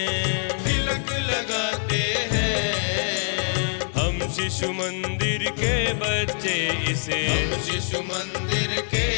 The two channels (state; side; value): silent; right; digital silence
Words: तिलक लगाते हैं। हम शिशु मंदिर के बच्चे इसे, हम शिशु मंदिर के